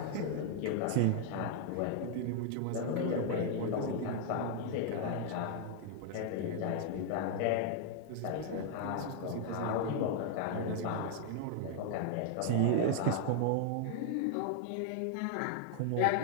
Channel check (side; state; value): both; different; correlation 0.00